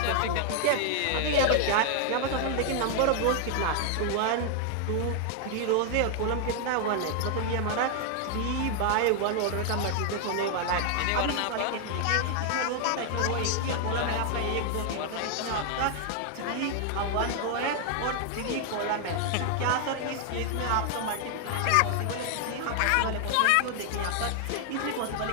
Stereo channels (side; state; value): both; different; correlation 0.00